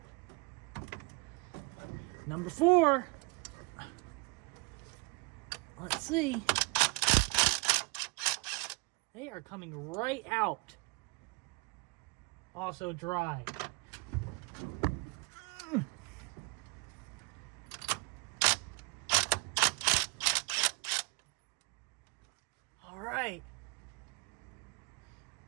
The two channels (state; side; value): quieter; left; 29.0 dB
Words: Number four. Let's see. They are coming right out. Also dry. All right.